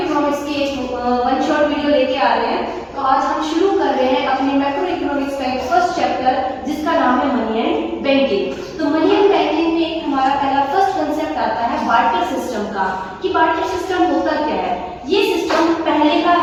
की एक वन शॉट वीडियो लेके आ रहे हैं। तो आज हम शुरू कर रहे हैं अपने मैक्रो इकोनॉमिक्स का एक फर्स्ट चैप्टर जिसका नाम है मनी एंड बैंकिंग। तो मनी एंड बैंकिंग में एक हमारा पहला फर्स्ट कंसेप्ट आता है बार्टर सिस्टम का, कि बार्टर सिस्टम होता क्या है। ये सिस्टम पहले का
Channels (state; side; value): identical; both; correlation 1.00